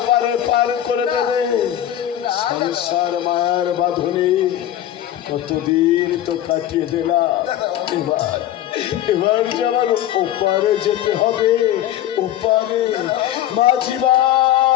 পার করে দেবে। সংসার মায়ের বাঁধনে কতদিন তো কাটিয়ে দিলাম, এবার এবার যে আমার ওপারে যেতে হবে, ওপারে। মাঝি ভাই,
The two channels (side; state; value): right; quieter; 12.1 dB